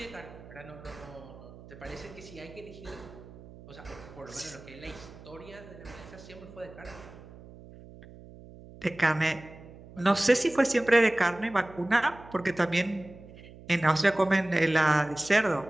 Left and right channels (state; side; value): noise; right; hum, 18 dB below the sound